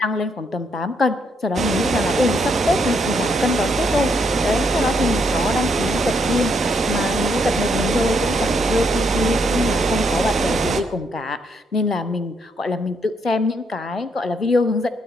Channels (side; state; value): both; normal; correlation 0.75